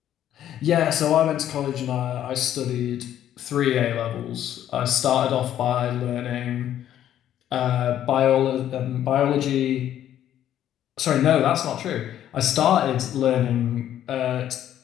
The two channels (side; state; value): right; quieter; 11.2 dB